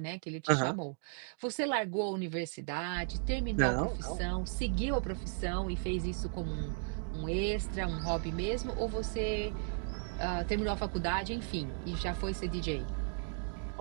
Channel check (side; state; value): left; silent; 54 dB below the other